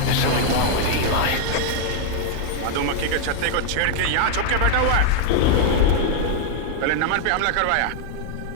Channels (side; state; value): both; different; correlation 0.00